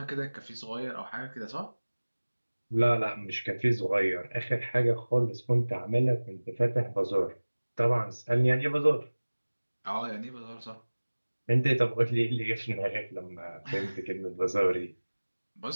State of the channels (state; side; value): inverted; both; correlation -1.00